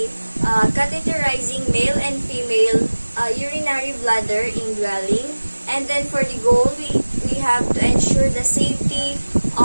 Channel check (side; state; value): both; inverted; correlation -1.00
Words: catheterizing male and female urinary bladder indwelling. And then for the goal, we have to ensure the safety